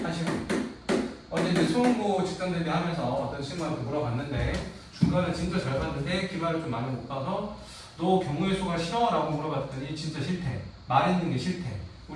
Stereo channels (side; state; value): both; identical; correlation 1.00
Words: 하시면 돼요. 어제 이제 수험고 직전 대비하면서 어떤 친구한테 물어봤는데 중간에 진짜 잘 봤는데 기말을 좀 많이 못 봐서 너 경우의 수가 싫어? 라고 물어봤더니 진짜 싫대. 말했는 게 싫대.